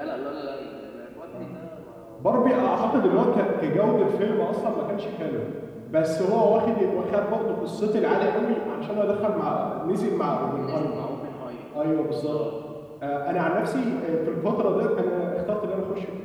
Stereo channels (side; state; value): both; identical; correlation 1.00